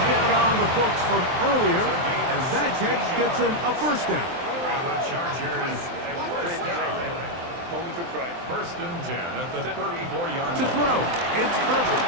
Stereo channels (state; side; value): late; left; 23 ms